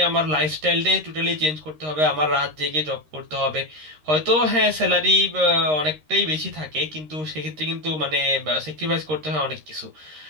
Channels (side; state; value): left; late; 13 ms